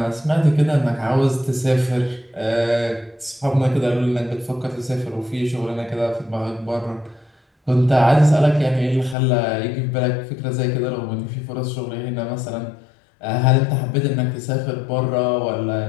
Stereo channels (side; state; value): right; drops out; at 9.2 s